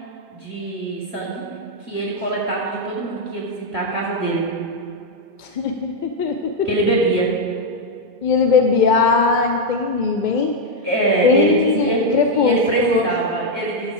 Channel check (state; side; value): late; left; 2.0 ms